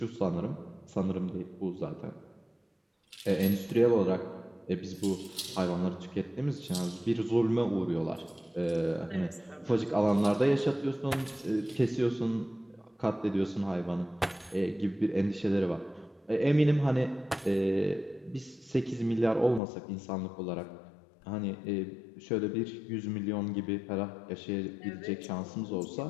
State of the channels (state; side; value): drops out; right; at 19.6 s